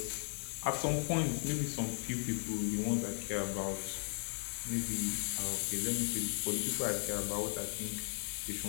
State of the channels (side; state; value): right; silent; digital silence